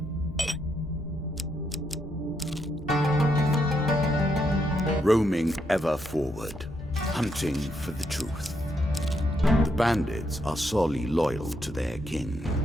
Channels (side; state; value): both; normal; correlation 0.78